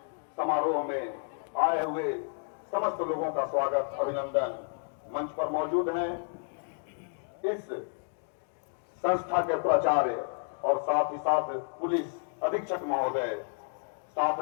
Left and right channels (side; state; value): right; silent; 57 dB below the other